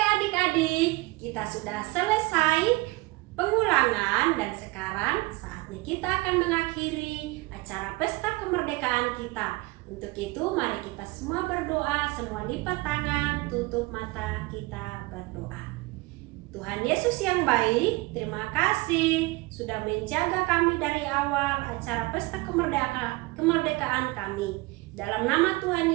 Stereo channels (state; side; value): quieter; left; 23.0 dB